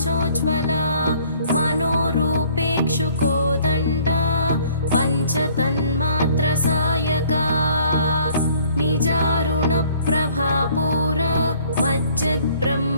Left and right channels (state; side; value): inverted; both; correlation -0.58